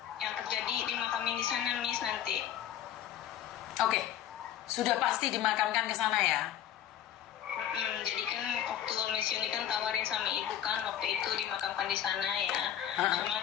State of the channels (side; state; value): right; quieter; 10.7 dB